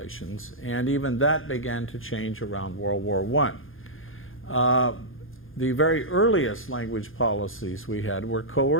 and even that began to change around World War I. The very earliest language policies we had were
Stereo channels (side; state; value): right; late; 0.59 ms